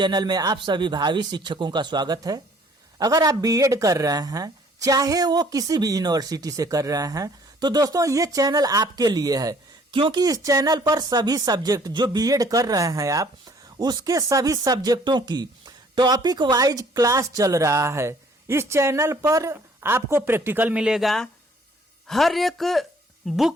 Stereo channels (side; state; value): both; normal; correlation 0.58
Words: में आप सभी भावी शिक्षकों का स्वागत है। अगर आप बीएड कर रहे हैं, चाहे वो किसी भी यूनिवर्सिटी से कर रहे हैं, तो दोस्तों ये चैनल आपके लिए है, क्योंकि इस चैनल पर सभी सब्जेक्ट जो बीएड कर रहे हैं आप, उसके सभी सब्जेक्टों की टॉपिक वाइज क्लास चल रहा है। इस चैनल पर आपको प्रैक्टिकल मिलेगा, हर एक